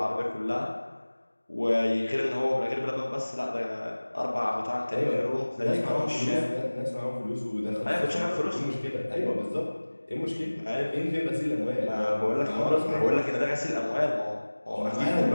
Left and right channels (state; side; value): inverted; both; correlation -1.00